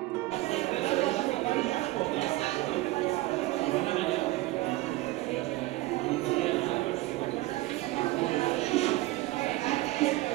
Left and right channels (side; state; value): left; quieter; 18.4 dB